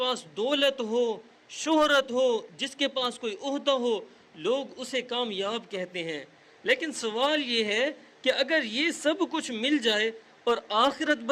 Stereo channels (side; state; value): both; identical; correlation 1.00